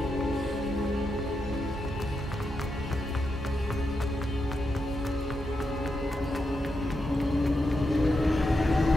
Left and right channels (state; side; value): normal; both; correlation 0.85